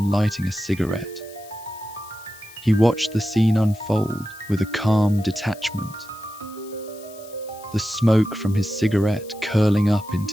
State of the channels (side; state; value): left; noise; hiss, 21 dB below the sound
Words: lighting a cigarette. He watched the scene unfold with a calm detachment, the smoke from his cigarette curling up